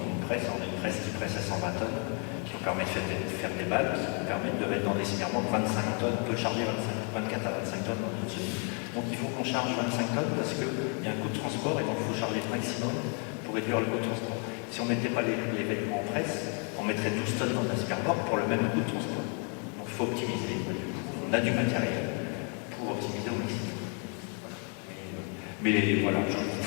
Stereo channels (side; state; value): right; quieter; 39.3 dB